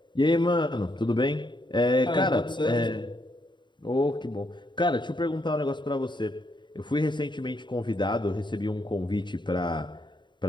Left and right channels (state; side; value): late; right; 0.22 ms